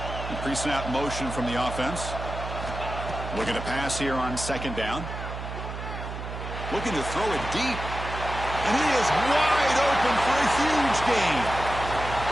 Pre-snap motion from the offense. Looking to pass here on second down. Looking to throw it deep. And he is wide open for a huge gain.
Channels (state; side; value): noise; right; hum, 8 dB below the sound